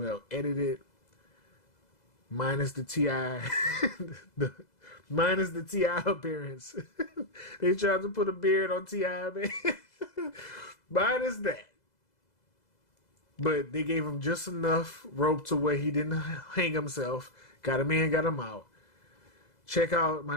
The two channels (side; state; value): right; late; 2.0 ms